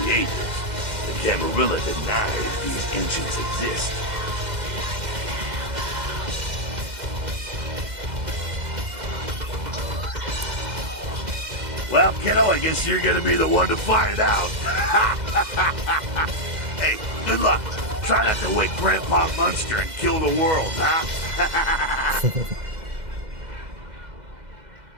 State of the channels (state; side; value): late; left; 2.0 ms